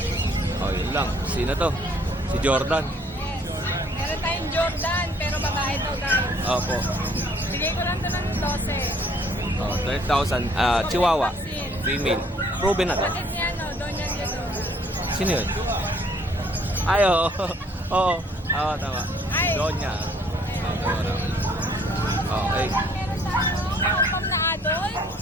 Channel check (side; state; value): both; normal; correlation 0.61